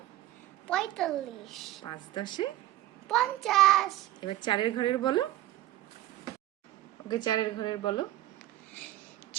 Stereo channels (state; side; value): quieter; left; 14.8 dB